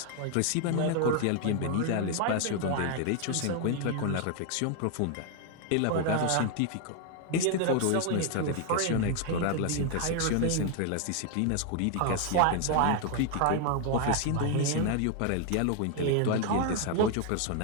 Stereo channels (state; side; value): different; both; correlation 0.00